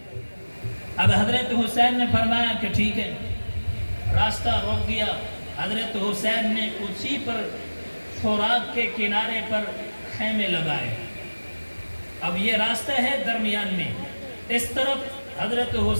اب حضرت حسین نے فرمایا کہ ٹھیک ہے، راستہ روک دیا۔ حضرت حسین نے اسی پر فورات کے کنارے پر خیمے لگائے۔ اب یہ راستہ ہے درمیان میں، اس طرف حضرت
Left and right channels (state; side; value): inverted; both; correlation -1.00